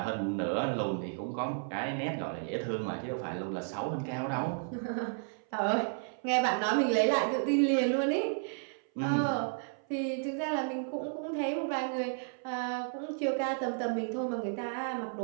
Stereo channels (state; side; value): silent; left; 56 dB below the other